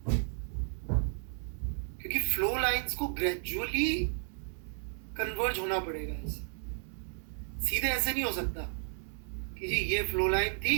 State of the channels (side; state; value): left; silent; 56 dB below the other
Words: क्योंकि फ्लो लाइंस को ग्रेजुअली कन्वर्ज होना पड़ेगा ऐसे, सीधे ऐसे नहीं हो सकता कि जी ये फ्लो लाइन थी